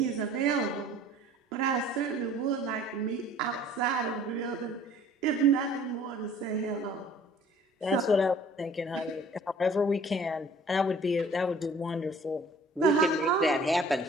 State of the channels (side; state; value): both; normal; correlation 0.51